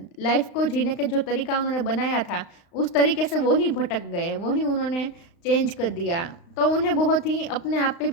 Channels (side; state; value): right; late; 35 ms